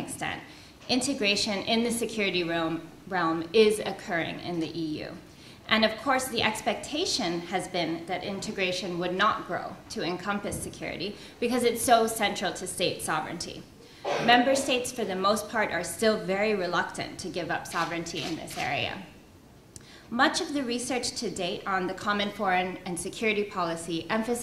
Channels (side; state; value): both; identical; correlation 1.00